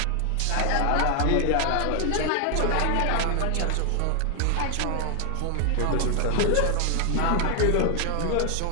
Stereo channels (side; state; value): both; different; correlation 0.00